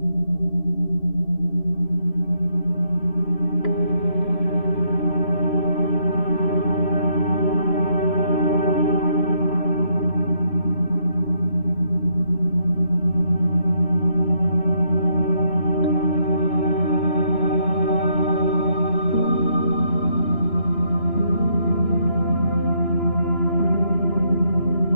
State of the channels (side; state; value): right; late; 3.0 ms